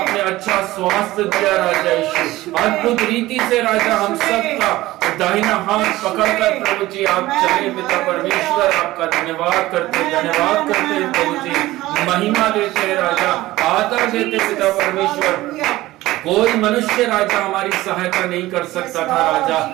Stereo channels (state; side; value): quieter; left; 17.3 dB